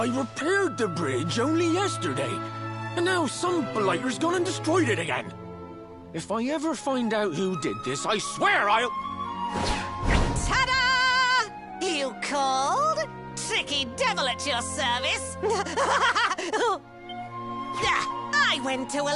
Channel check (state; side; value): identical; both; correlation 1.00